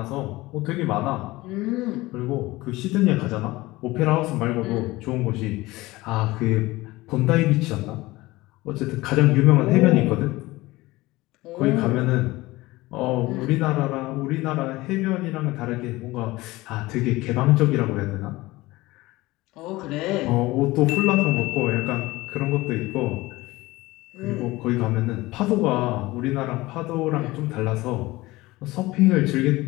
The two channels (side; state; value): right; quieter; 19.8 dB